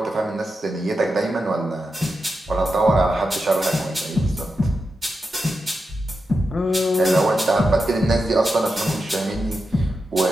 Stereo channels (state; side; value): normal; both; correlation 0.88